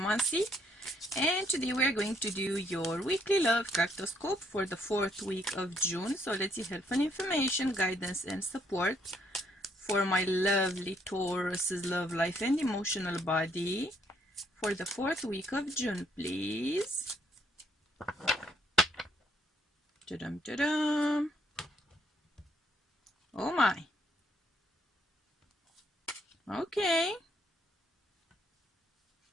and today we are going to do your weekly love cartoscope for the 4th week of June. So let's see helpful information, guidance, and support for my lovely Taurus's love life and emotional body for the 4th week of June, please. Ta-dum, ta-dum. Oh my. Okay.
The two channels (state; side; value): normal; both; correlation 0.70